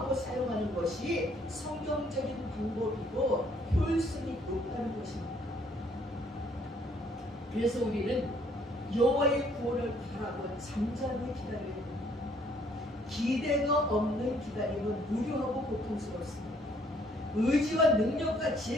사용하는 것이 성경적인 방법이고 효율성이 높다는 것입니다. 그래서 우리는 여호와의 구원을 바라고 잠잠히 기다려야 됩니다. 기대가 없는 기다림은 무료하고 고통스럽습니다. 의지와 능력과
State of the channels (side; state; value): both; normal; correlation 0.64